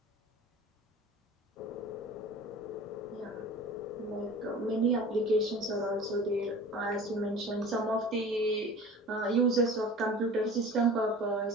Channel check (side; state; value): both; normal; correlation 0.40